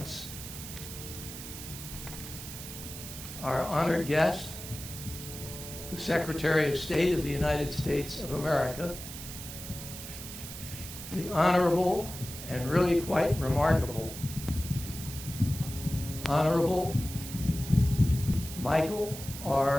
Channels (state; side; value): noise; right; hiss, 10 dB below the sound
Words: our honored guest, the Secretary of State of the United States of America, the Honorable and really quite remarkable Honorable Michael